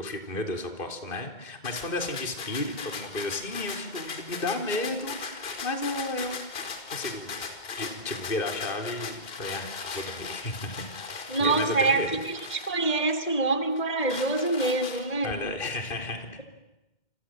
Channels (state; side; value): late; right; 2.1 ms